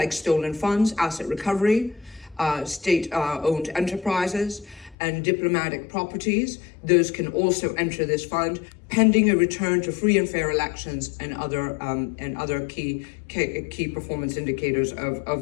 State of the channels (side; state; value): right; drops out; at 5.0 s